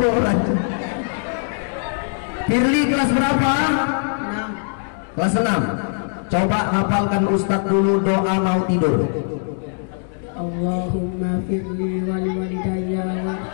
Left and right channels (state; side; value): silent; right; digital silence